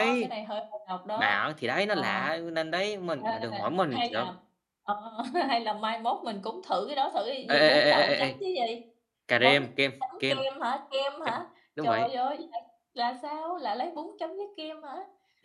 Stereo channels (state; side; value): identical; both; correlation 1.00